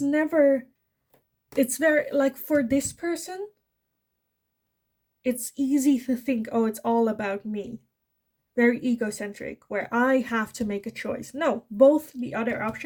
very, like, for this person, it's easy to think, oh, it's all about me. Very egocentric, where I have to make a choice. No, both the other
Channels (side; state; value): both; identical; correlation 1.00